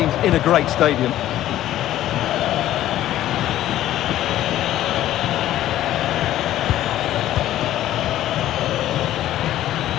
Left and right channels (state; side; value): quieter; right; 13.3 dB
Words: in a great stadium.